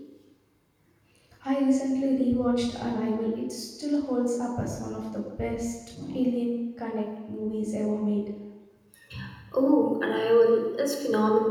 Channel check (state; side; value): identical; both; correlation 1.00